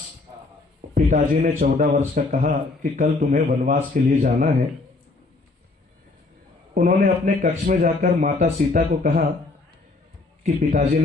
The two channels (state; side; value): quieter; right; 3.5 dB